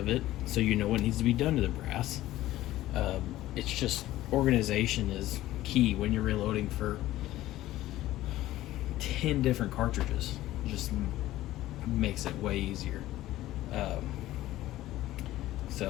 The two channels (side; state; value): right; quieter; 15.3 dB